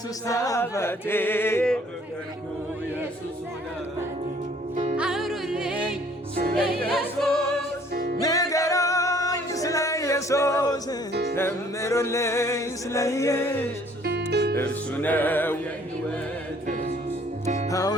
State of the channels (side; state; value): both; normal; correlation 0.58